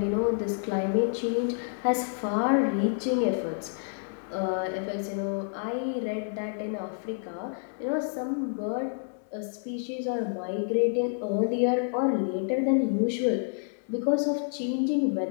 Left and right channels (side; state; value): right; silent; digital silence